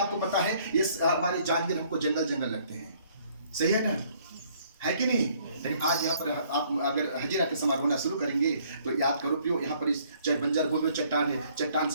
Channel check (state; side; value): inverted; both; correlation -0.62